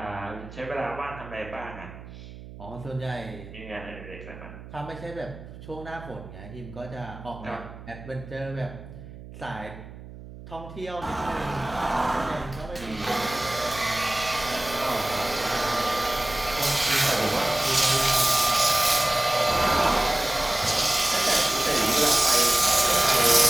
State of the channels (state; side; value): noise; right; hum, 15 dB below the sound